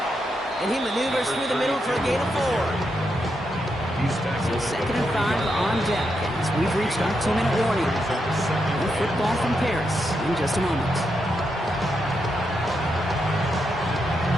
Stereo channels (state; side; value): normal; both; correlation 0.83